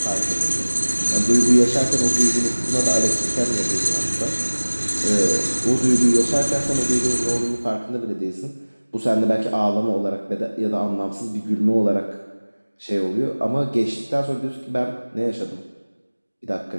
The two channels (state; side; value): inverted; both; correlation -1.00